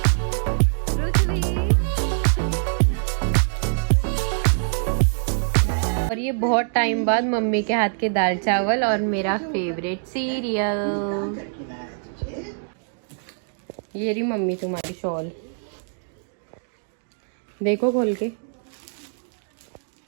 और ये बहुत टाइम बाद मम्मी के हाथ के दाल चावल और मेरा फेवरेट सीरियल। ये रही मम्मी तुम्हारी शॉल, देखो खोल के।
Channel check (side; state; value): left; silent; digital silence